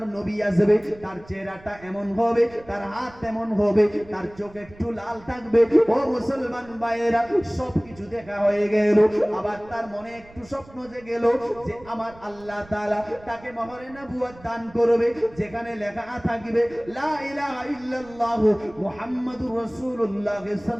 নবী আসবে, তার চেহারাটা এমন হবে, তার হাত এমন হবে, তার চোখ একটু লাল থাকবে। ও মুসলমান ভাইয়েরা, সবকিছু দেখা হয়ে গেল। আবার তার মনে একটু স্বপ্ন জেগেল যে আমার আল্লাহ তাআলা তাকে মোহরে নবুয়ত দান করবে, যেখানে লেখা থাকবে লা ইলাহা ইল্লাল্লাহু মুহাম্মাদুর রাসূলুল্লাহ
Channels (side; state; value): right; noise; rumble, 23 dB below the sound